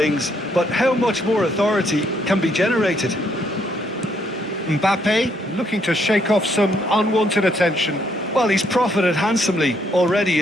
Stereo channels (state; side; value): normal; both; correlation 0.71